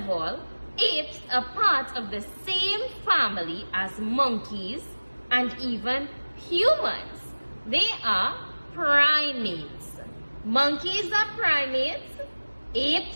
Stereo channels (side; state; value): both; inverted; correlation -1.00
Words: all, apes are part of the same family as monkeys and even humans. They are primates. Monkeys are primates,